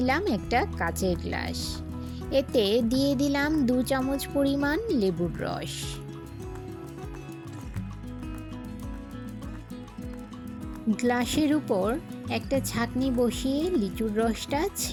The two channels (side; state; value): both; identical; correlation 1.00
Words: একটা কাচের গ্লাস। এতে দিয়ে দিলাম 2 চামচ পরিমাণ লেবুর রস। গ্লাসের উপর একটা ছাঁকনি বসিয়ে লিচুর রসটা